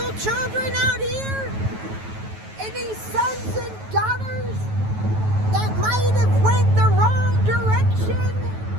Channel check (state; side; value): late; left; 9.3 ms